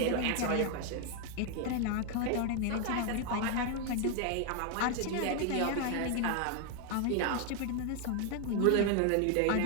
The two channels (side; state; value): both; different; correlation 0.01